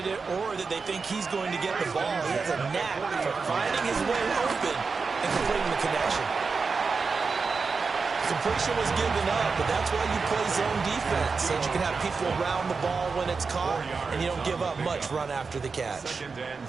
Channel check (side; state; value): left; quieter; 4.8 dB